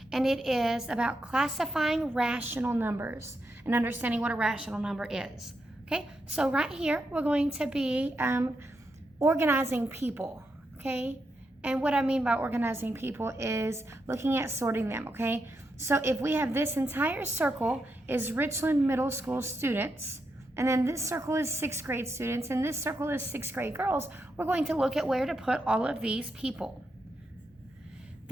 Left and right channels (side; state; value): both; normal; correlation 0.84